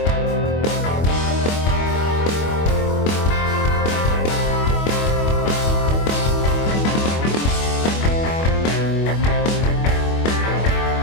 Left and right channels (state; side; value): late; right; 25 ms